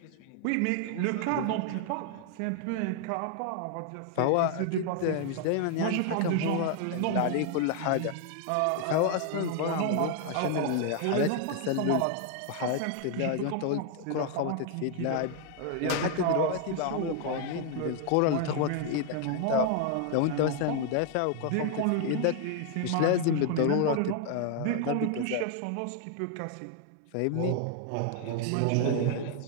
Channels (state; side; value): different; both; correlation 0.00